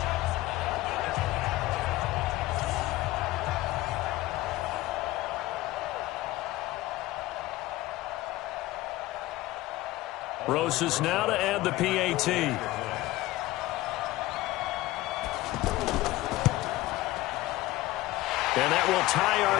Rosas now to add the PAT. And that will tie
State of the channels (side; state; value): right; quieter; 17.7 dB